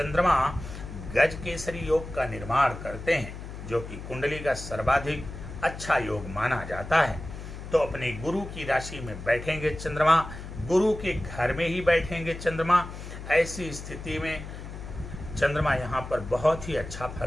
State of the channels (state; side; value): noise; left; hum, 10 dB below the sound